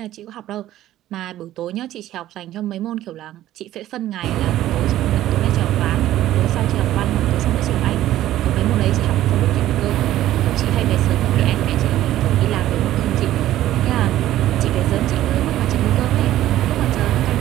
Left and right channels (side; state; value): left; quieter; 13.7 dB